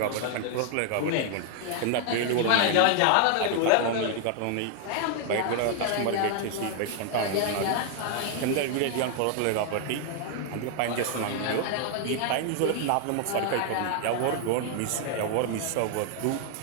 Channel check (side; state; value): both; different; correlation 0.00